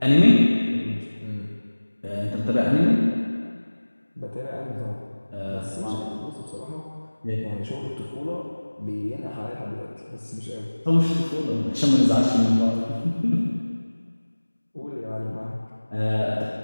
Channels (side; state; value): both; inverted; correlation -1.00